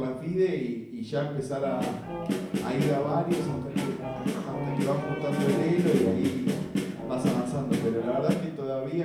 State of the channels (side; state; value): both; identical; correlation 1.00